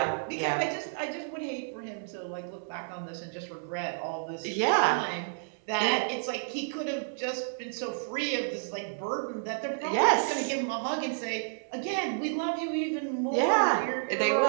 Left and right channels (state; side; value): silent; left; 57 dB below the other